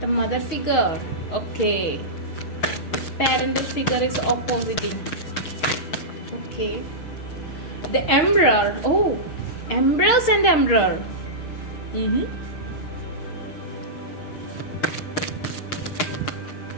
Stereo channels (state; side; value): late; right; 6.3 ms